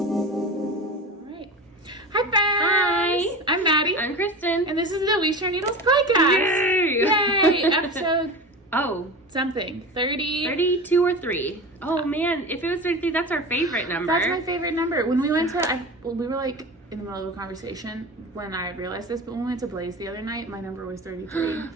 Hi friends! Hi! I'm Maddie. I'm Christen. And this is the We Share Needles podcast. Yay! Yay! Episode something. 30. 32 or 3. Oh man, if it was 33, that's our favorite number. That's my favorite number. When we went to, we were like in the middle of a conversation when I realized this, but when we went to Blaze the other night, my number was 33.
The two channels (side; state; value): both; normal; correlation 0.30